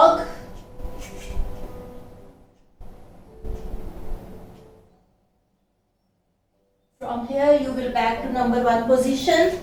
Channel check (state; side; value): identical; both; correlation 1.00